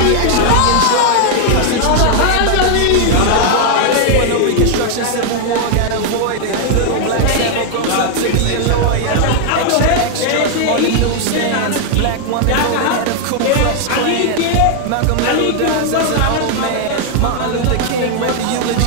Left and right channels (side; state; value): both; different; correlation 0.00